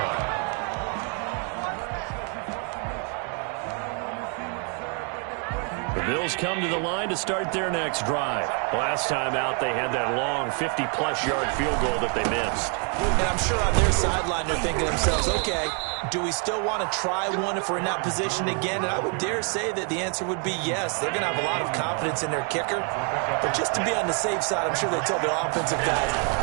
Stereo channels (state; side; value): quieter; left; 39.3 dB